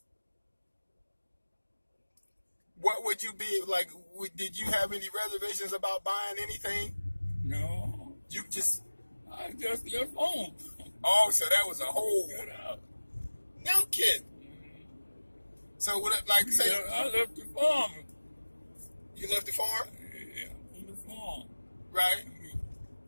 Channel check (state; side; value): inverted; both; correlation -1.00